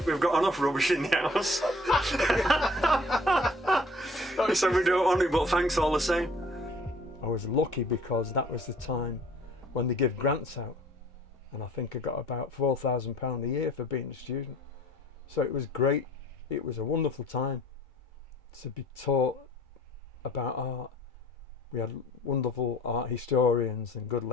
we've got enough rubbish in the house." He said, "We don't want it, but thanks all the same." I was lucky because that was the time when they give grants out, and I think I got about £4,000 a year for being a student. So it was great. It was a wonderful time to be taught about art. We had wonderful art historians and good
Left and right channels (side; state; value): both; normal; correlation 0.53